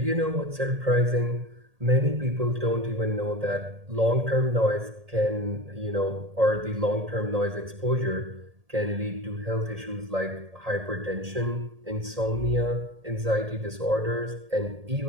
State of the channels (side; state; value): left; late; 1.8 ms